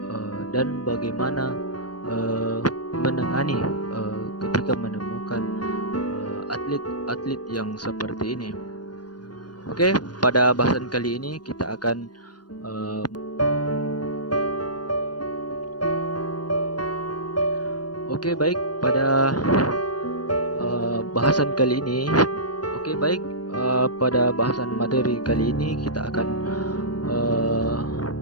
dan bagaimana menangani ketika menemukan atlet-atlet yang seperti ini. Oke, pada bahasan kali ini kita akan pada bahasan kali ini. Pada bahasan materi kali ini kita akan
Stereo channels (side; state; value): right; late; 0.69 ms